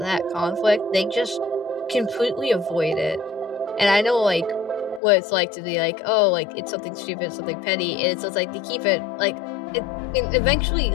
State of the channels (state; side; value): drops out; right; at 5.0 s